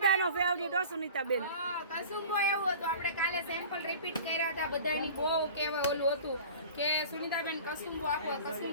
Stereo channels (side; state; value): both; inverted; correlation -0.40